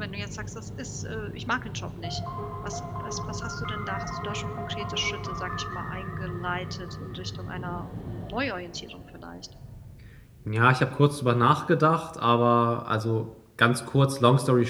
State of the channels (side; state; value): both; identical; correlation 1.00